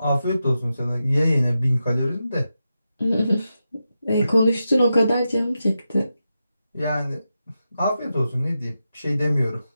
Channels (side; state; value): both; inverted; correlation -0.89